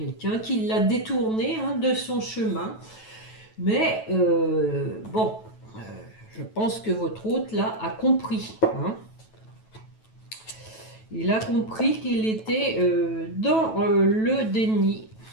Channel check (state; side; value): late; right; 9.2 ms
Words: qui l'a détourné hein, de son chemin. Mais bon, je pense que votre hôte là a compris. Hein. Il a compris qu'il était dans le déni,